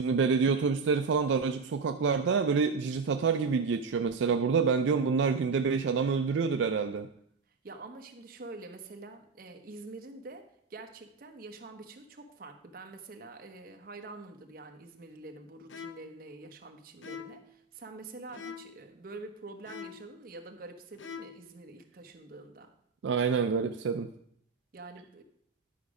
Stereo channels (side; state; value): left; quieter; 4.9 dB